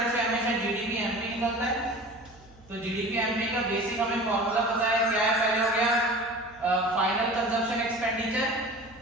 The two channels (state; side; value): noise; right; hum, 25 dB below the sound